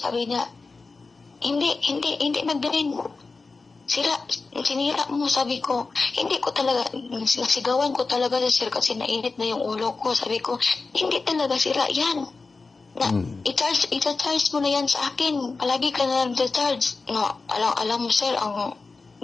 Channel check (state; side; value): quieter; right; 4.0 dB